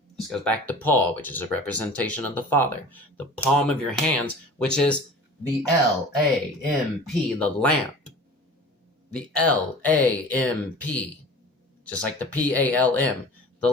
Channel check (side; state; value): both; normal; correlation 0.41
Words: This goes back to Paul, which is a representation of the father. The palm of your hands, which is the L-A-M-P, the lamp. The L-A-M-P, just like the P-A-L-M, the